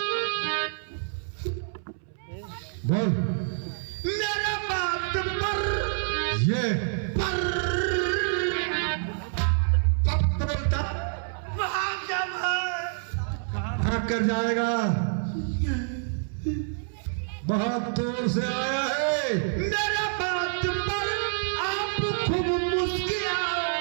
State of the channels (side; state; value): left; silent; 60 dB below the other